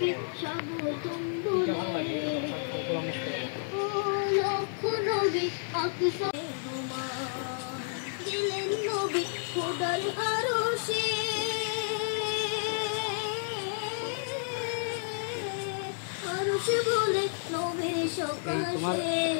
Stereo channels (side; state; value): right; silent; digital silence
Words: স্বাগতম বলে ও লক্ষ নবী আকসা মেহমান গেলেন নবী খোদার আরশে আরশে বলে নবীর সকাশে